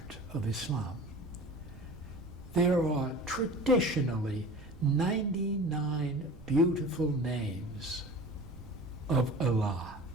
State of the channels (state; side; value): noise; right; rumble, 18 dB below the sound